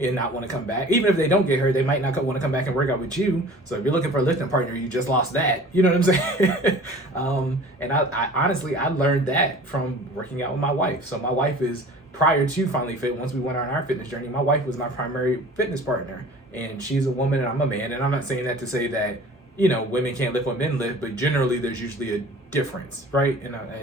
not want to come back. Even if they don't get hurt, they might not want to come back and work out with you. So if you're looking for a lifting partner, you just lost that. You know what I'm saying? And I honestly, I learned that from working out with my wife. So my wife is, prior to FinallyFit, once we went on our fitness journey, my wife was my primary fitness partner. And she's a woman and I'm a man. And I'm not saying that to say that women can't lift what men lift, but generally there's usually a difference, right? And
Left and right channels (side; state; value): both; normal; correlation 0.44